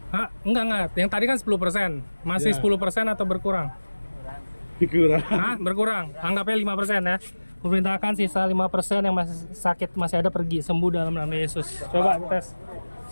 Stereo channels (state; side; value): inverted; both; correlation -1.00